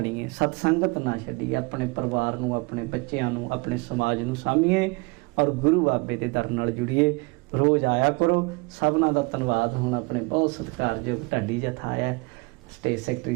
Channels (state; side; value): quieter; left; 27.1 dB